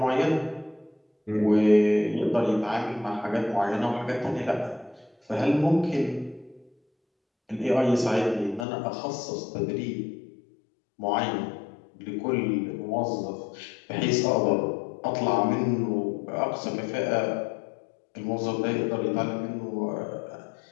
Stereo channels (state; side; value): drops out; right; at 8.7 s